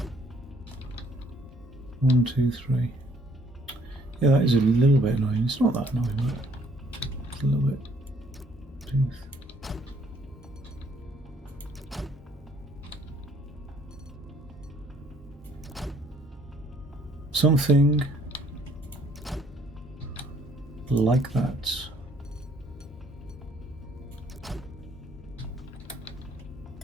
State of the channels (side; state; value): both; normal; correlation 0.63